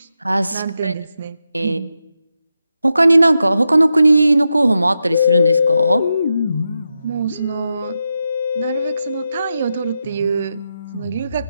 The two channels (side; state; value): both; inverted; correlation -0.88